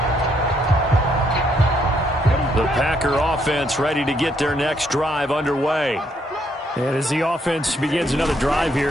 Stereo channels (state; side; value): normal; both; correlation 0.72